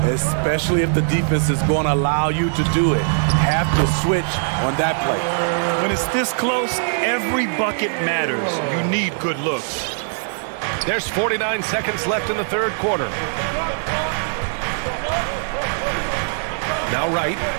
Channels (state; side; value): silent; left; digital silence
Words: Especially if the defense is going to allow you to do it. Have to switch on that play. When it's this close, every bucket matters. You need good looks. There's 49 seconds left in the third quarter. Now Wright.